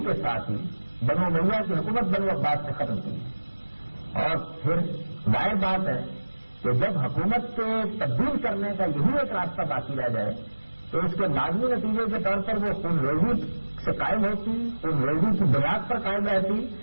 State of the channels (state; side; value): inverted; both; correlation -1.00